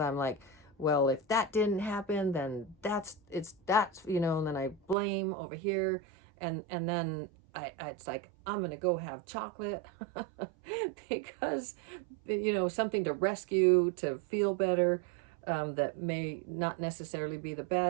like, well, if that didn't happen, then that's, and then I blame over here. And then it's like, I'm going to go have chocolate because, something to rescue, to feel better, that may not necessarily be the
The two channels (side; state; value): left; drops out; at 5.0 s